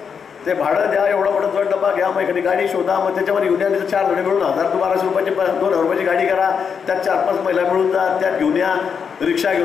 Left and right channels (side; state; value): right; quieter; 6.6 dB